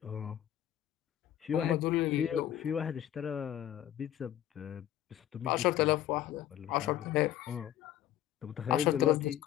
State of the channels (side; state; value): right; quieter; 12.0 dB